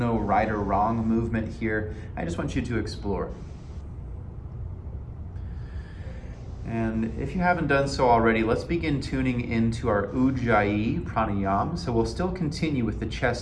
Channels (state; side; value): identical; both; correlation 1.00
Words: right or wrong movement here. I just want you to explore. And if you haven't done so already, let's begin tuning into our Ujjayi pranayama. So we'll still continue with the